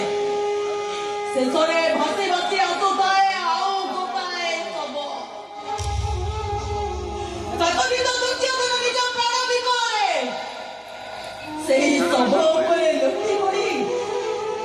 ଶେଷରେ ଭାସି ଭାସି ଆସୁଥାଏ ଆଉ ଗୋଟାଏ ଶବ। କାତରିତ ଦୁର୍ଚ୍ଛୋଦନ ନିଜ ପ୍ରାଣ ବିକଳରେ ସେହି ଶବ ଉପରେ ଲୋଟି ପଡ଼ି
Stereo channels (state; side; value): identical; both; correlation 1.00